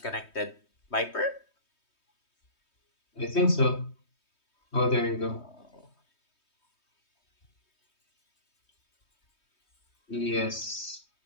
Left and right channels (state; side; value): late; right; 3.2 ms